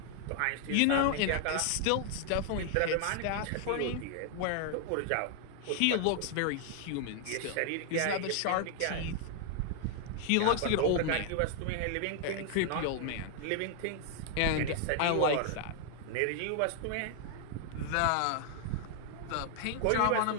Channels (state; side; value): different; both; correlation 0.00